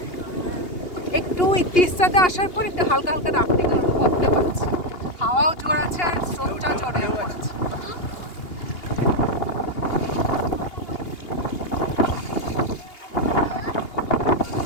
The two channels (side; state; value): right; late; 2.8 ms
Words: একটু তিস্তাতে আসার পর একটু হালকা হালকা রাফটিং এর অনুভবটা পাচ্ছি। হাওয়াও জোর আছে আর স্রোতটাও জোরে পড়েছে।